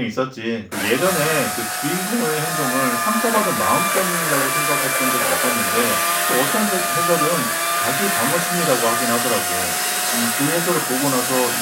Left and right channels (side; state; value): both; identical; correlation 1.00